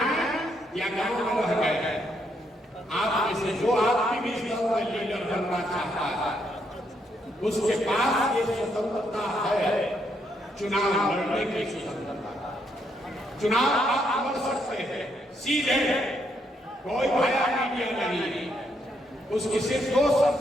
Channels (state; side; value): normal; both; correlation 0.75